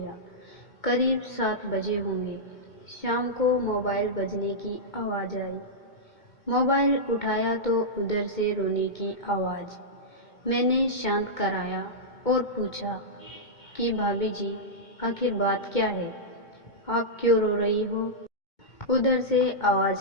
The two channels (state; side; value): late; right; 2.2 ms